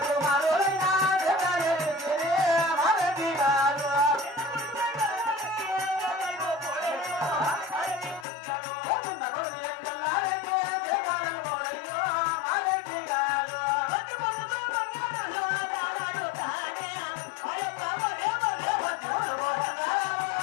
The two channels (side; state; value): right; drops out; at 8.2 s